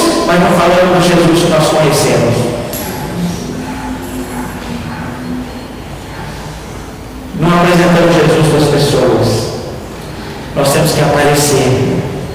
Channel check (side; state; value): both; identical; correlation 1.00